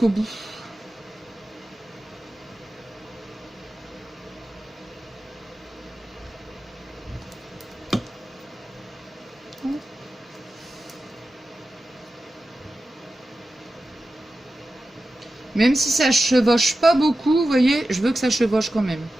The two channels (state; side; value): normal; both; correlation 0.93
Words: bout. Même si ça chevauche pas beaucoup, vous voyez, je veux que ça chevauche quand même.